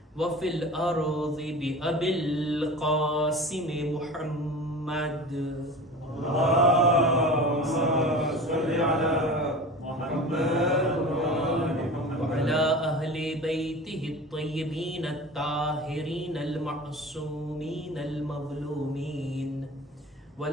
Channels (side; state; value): both; normal; correlation 0.35